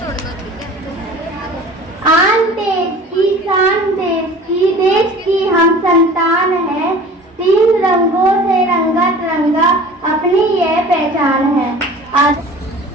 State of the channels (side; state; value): both; normal; correlation 0.43